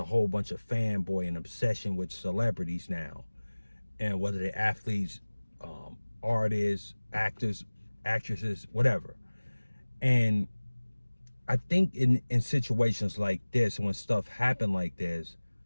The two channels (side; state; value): both; inverted; correlation -1.00